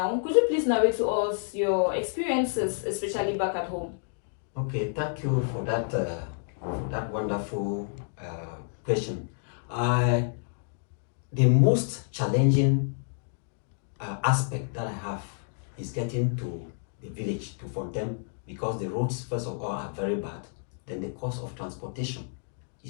Could you please narrate to us your experiences, especially back at home? Okay, thank you for that wonderful question. Uh, the most challenging aspect that I have is getting to the village, to Fontaine, because the roads, first of all, are very bad. Then the cost of transportation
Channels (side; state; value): right; silent; digital silence